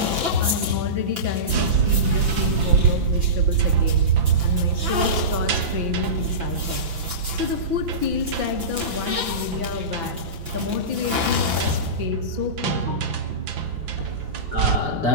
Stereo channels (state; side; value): late; left; 5.9 ms